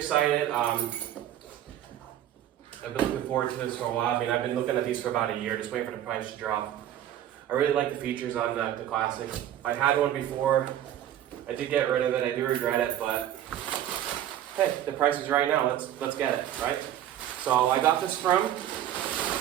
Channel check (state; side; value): quieter; left; 11.6 dB